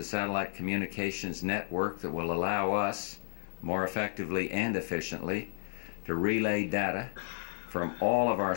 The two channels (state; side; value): silent; right; 56 dB below the other